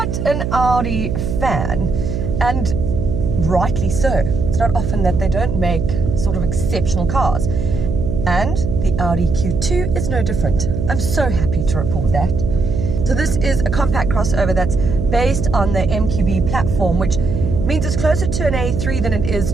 an Audi fan, and rightly so. It's not often that they don't make sort of exceptional cars, and the Audi Q2 is no different. I'm so happy to report that. So this is a compact crossover that's based on the MQB platform, which means it's closer to an A3 than it is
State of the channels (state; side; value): noise; right; hum, 2 dB below the sound